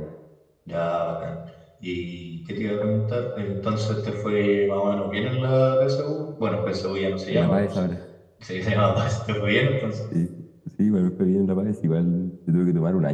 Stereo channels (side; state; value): both; identical; correlation 1.00